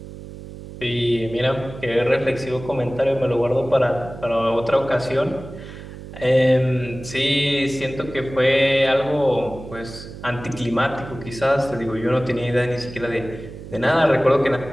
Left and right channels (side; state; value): right; noise; hum, 13 dB below the sound